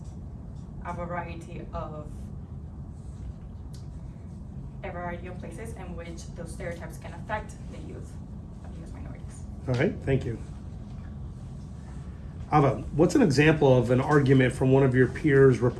a variety of places in which those stereotypes can affect the youth of U.S. minorities. All right, thank you. Ava, what's an example of an argument from one of your peers'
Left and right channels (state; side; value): identical; both; correlation 1.00